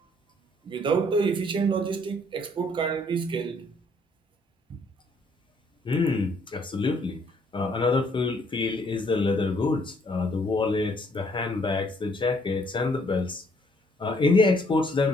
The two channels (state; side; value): normal; both; correlation 0.66